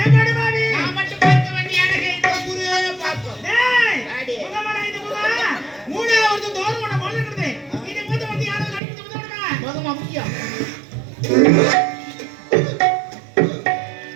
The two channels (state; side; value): drops out; left; at 8.8 s